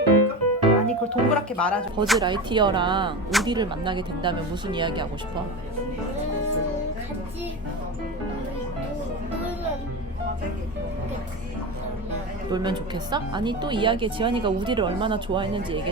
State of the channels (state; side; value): normal; both; correlation 0.24